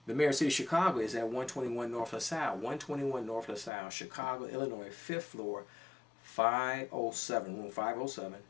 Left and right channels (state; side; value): drops out; right; at 3.7 s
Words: The mayor of the city of Chicago is at 121 North LaSalle. 121 North LaSalle, Chicago, Illinois, 5th floor, 507, room 507,